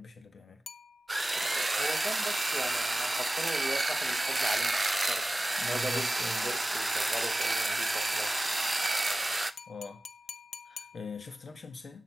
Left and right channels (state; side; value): normal; both; correlation 0.96